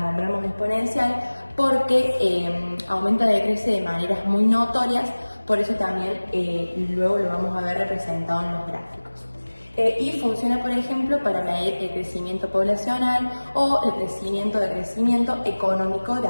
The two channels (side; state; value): both; inverted; correlation -1.00